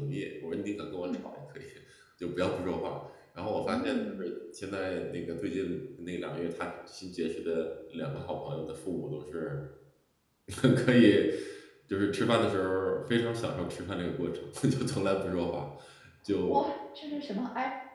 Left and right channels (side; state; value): both; identical; correlation 1.00